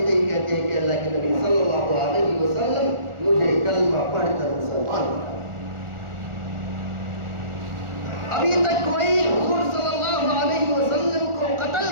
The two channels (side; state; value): left; late; 1.4 ms